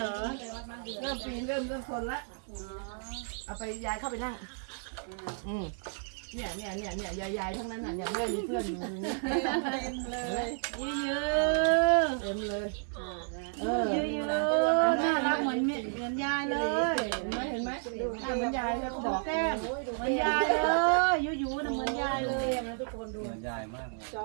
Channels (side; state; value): left; silent; 57 dB below the other